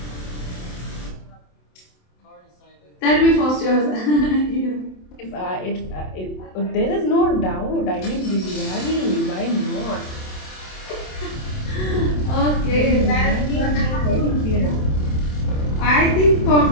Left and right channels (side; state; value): right; late; 27 ms